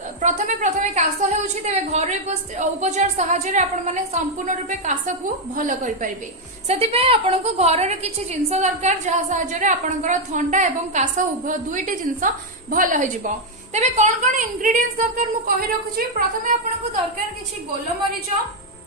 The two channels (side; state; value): both; normal; correlation 0.01